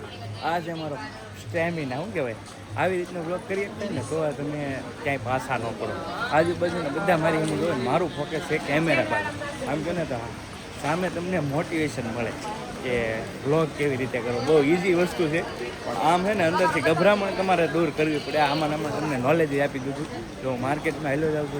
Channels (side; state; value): both; identical; correlation 1.00